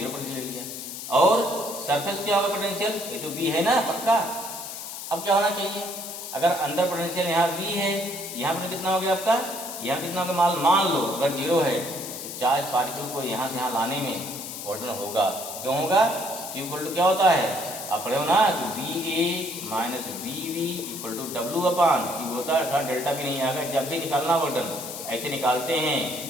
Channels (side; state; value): left; noise; hiss, 8 dB below the sound